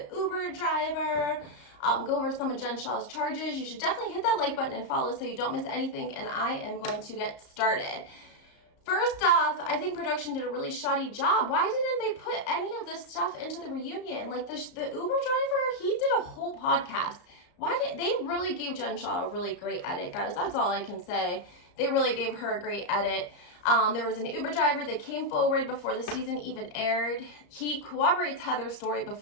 Uber driver, go over some of Jen Shah's charges. You should definitely hit that like button and follow so you don't miss anything, and I am going to get started. First off, I think production did a really shoddy job. Why didn't they put any of this stuff into the reunion? Like the Uber driver, he did a whole podcast. Why did they really gave Jen Shah a really great edit, guys? That's all I can say. They really gave her a great edit. There was an Uber driver that came forward before the season even aired. He corroborates Heather's story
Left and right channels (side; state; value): right; late; 34 ms